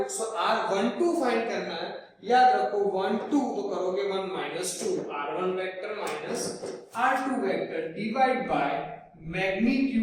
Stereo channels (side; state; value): both; identical; correlation 1.00